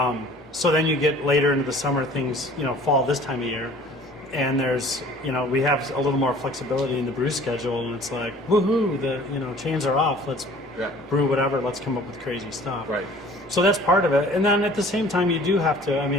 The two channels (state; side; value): normal; both; correlation 0.50